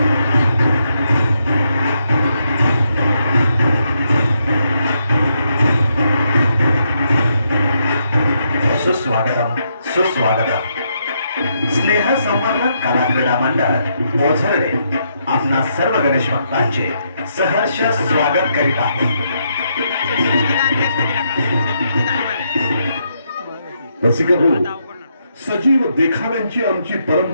सुस्वागतम सुस्वागतम। स्नेह संवर्धक कला क्रीडा मंडळ ओझरडे आपणा सर्व गणेश भक्तांचे सहर्ष स्वागत करीत आहे। रसिक हो, सजीव देखाव्यांची आमची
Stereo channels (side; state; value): both; inverted; correlation -0.78